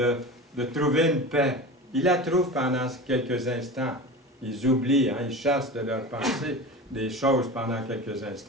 trouver une paix. Ils la trouvent pendant quelques instants. Ils oublient, hein, ils chassent de leur pensée des choses pendant quelques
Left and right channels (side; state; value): both; normal; correlation 0.31